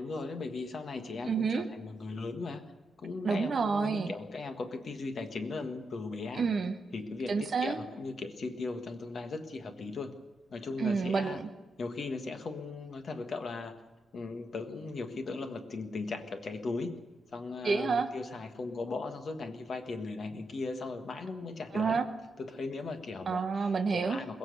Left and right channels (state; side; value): normal; both; correlation 0.84